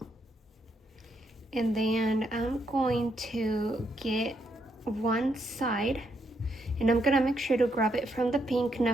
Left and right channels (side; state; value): both; normal; correlation 0.77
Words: And then I'm going to get one side, and I'm gonna make sure to grab it from the pink,